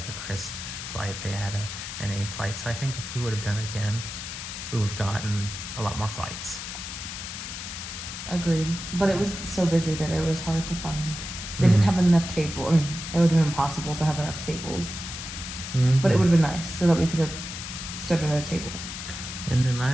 a crisp flight, they had an A flight. So I think if we would have done it again, we would have gotten a lot more flights. Agreed. But it was so busy that it was hard to find. They didn't have enough tables. I mean, it would have been impossible to have enough tables. But it would have been nice so that we could have stood at a table. And then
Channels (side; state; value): left; noise; hiss, 8 dB below the sound